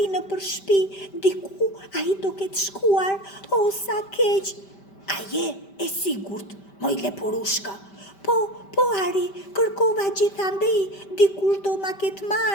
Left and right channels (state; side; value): late; right; 5.1 ms